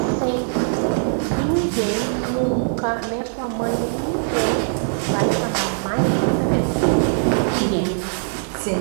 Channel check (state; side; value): silent; left; digital silence